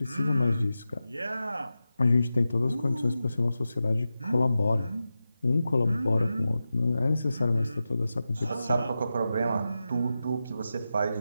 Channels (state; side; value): inverted; both; correlation -0.92